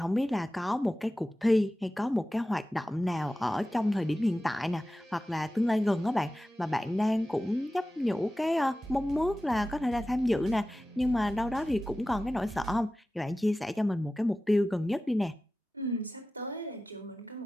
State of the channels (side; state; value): both; normal; correlation 0.95